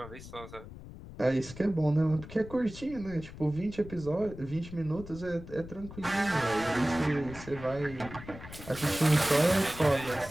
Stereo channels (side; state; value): left; noise; rumble, 14 dB below the sound